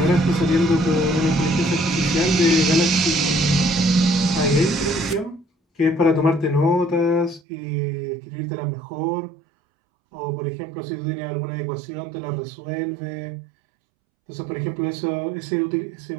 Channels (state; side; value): drops out; left; at 7.4 s